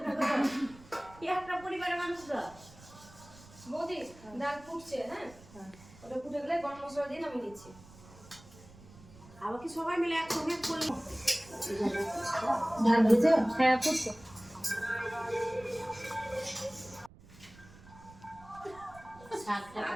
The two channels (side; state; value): right; noise; rumble, 21 dB below the sound